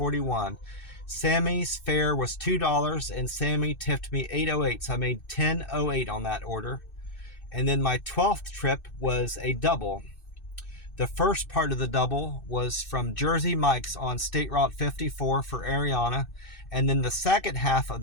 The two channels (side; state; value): right; late; 2.6 ms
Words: Sammy's fare was $2 and Sammy tipped me $8.08, so I made $10.08 on that order. And then my 12th trip was a double. The first part of the double was from Jersey Mike's on State Route 54 for Ariana. And then the second half of